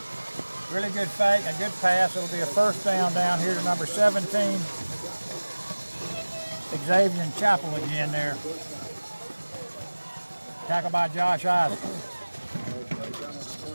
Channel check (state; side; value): inverted; both; correlation -1.00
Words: Really good fake, a good pass. It'll be a first down here to number 17. Xavier Chapel again there. Tackled by Josh Isaac.